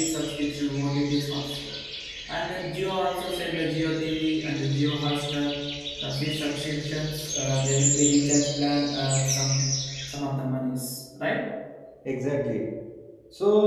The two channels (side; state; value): both; identical; correlation 1.00